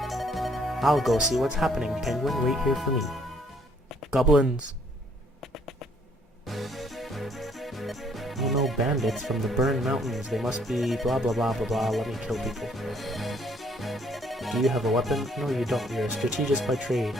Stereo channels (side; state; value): both; normal; correlation 0.64